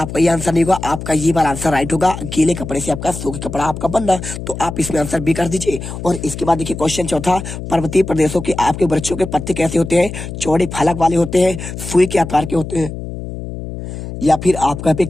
ये आंसर नहीं होगा। आपका ये वाला आंसर राइट होगा, गीले कपड़े से आपका सूखे कपड़ा आपका बनना। तो आप इसमें आंसर बी कर दीजिए। और इसके बाद देखिए क्वेश्चन चौथा, पर्वतीय प्रदेशों के आपके वृक्षों के पत्ते कैसे होते हैं? चौड़े फलक वाले होते हैं, सुई के आकार के होते हैं, या फिर आपका यहाँ पे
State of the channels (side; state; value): left; noise; hum, 8 dB below the sound